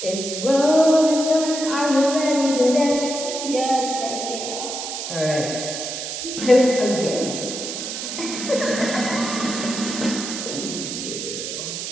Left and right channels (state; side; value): noise; right; hiss, 6 dB below the sound